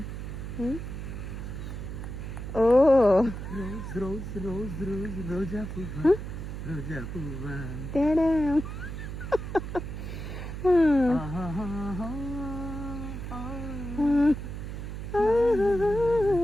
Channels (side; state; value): right; noise; hum, 7 dB below the sound